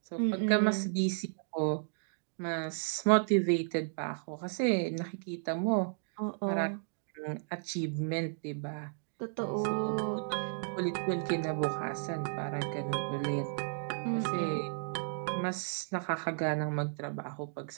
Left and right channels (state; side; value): silent; left; digital silence